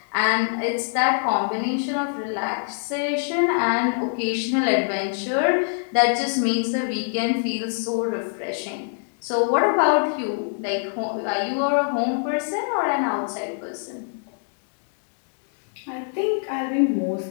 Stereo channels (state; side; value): silent; right; digital silence